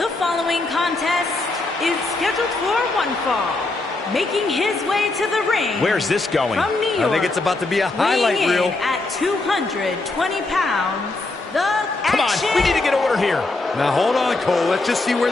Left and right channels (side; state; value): right; quieter; 3.2 dB